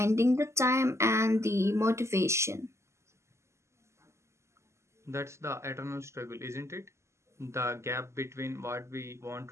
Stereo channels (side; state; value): left; late; 0.13 ms